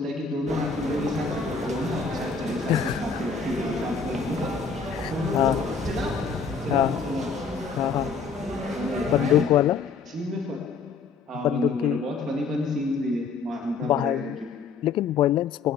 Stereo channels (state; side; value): quieter; right; 5.3 dB